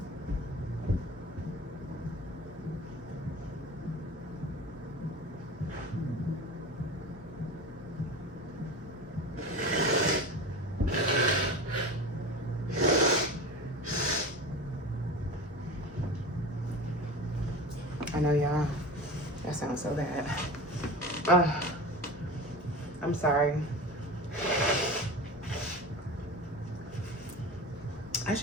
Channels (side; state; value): both; normal; correlation 0.31